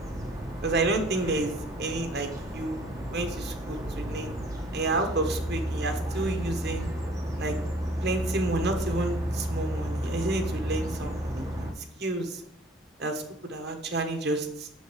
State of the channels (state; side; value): normal; both; correlation 0.53